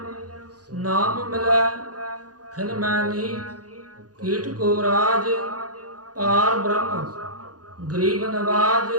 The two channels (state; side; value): late; left; 0.68 ms